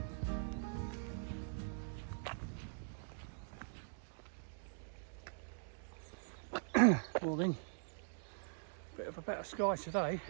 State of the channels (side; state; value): left; silent; digital silence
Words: morning. Bit of a better sky today.